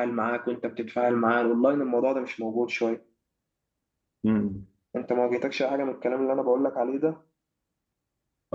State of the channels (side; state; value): both; identical; correlation 1.00